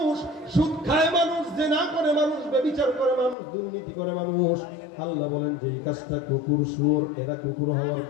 সুদ খায় মানুষ, জিনা করে মানুষ, ব্যভিচার করে মানুষ, দুর্নীতি করে মানুষ। আল্লাহ বলেন যে এই কাজটা কুকুর শুয়োর এরা কুকুর হওয়ার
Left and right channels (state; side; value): drops out; right; at 3.4 s